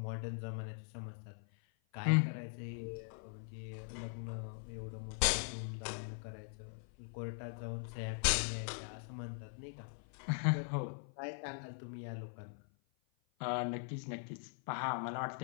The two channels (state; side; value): silent; right; 50 dB below the other